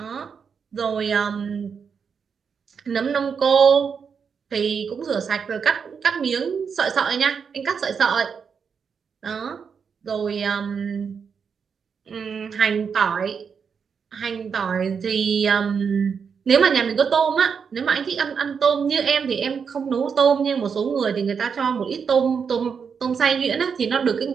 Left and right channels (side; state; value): left; quieter; 6.3 dB